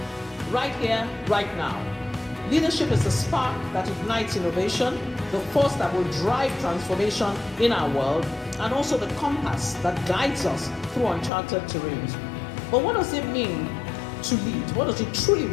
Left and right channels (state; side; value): drops out; right; at 11.3 s